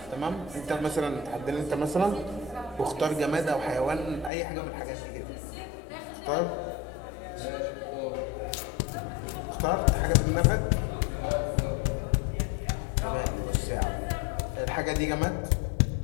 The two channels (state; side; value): drops out; right; at 4.3 s